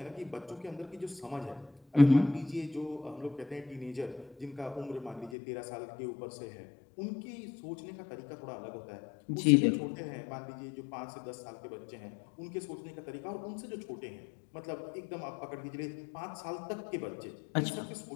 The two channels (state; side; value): drops out; right; at 5.4 s